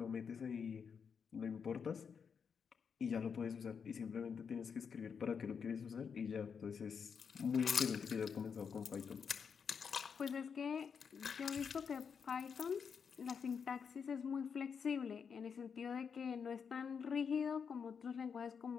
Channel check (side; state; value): right; quieter; 6.4 dB